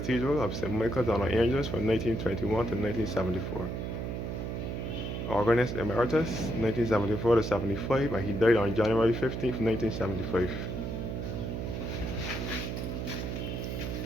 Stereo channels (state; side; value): noise; right; hum, 4 dB below the sound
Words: of St. Michael's and All Angels from 1921 to 1974. Organist emeritus, 1974 to 75, and he died on January 15th, 1975.